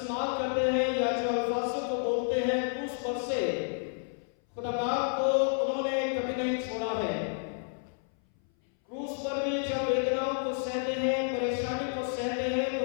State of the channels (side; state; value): right; silent; 58 dB below the other